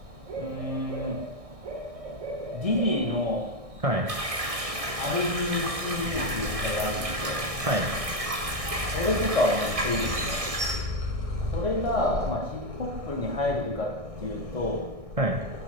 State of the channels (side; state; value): left; late; 1.6 ms